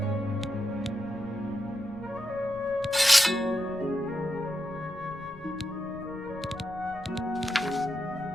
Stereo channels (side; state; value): left; noise; rumble, 18 dB below the sound